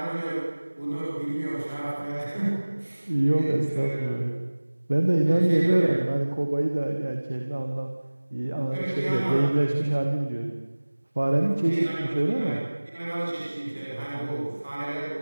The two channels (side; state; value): both; inverted; correlation -1.00